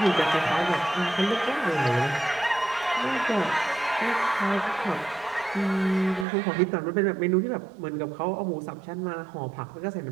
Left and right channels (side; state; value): left; drops out; at 6.2 s